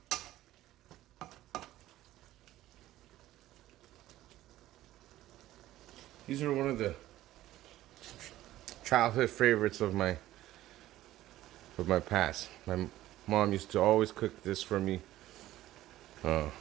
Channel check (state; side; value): quieter; left; 14.9 dB